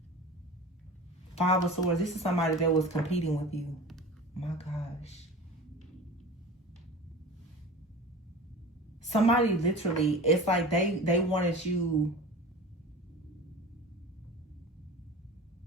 Five of Swords. This is somebody that was competing with you. My gosh. Somebody literally, it's like they wanted you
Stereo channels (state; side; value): normal; both; correlation 0.35